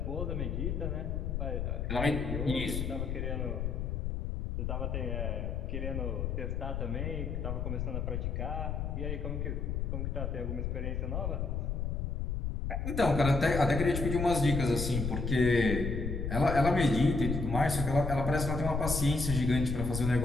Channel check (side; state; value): left; noise; rumble, 2 dB below the sound